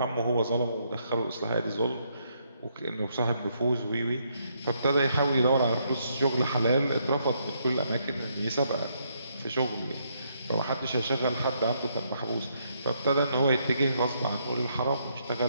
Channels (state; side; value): inverted; both; correlation -0.74